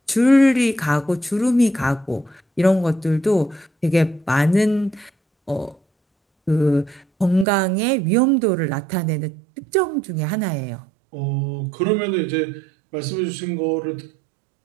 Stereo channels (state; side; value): drops out; left; at 7.5 s